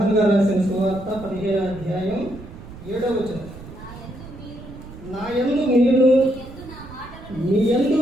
గారు రాసిన సువార్త 15వ అధ్యాయం 7వ వచనం. నా యందు మీరు మీ యందు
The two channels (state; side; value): noise; right; rumble, 15 dB below the sound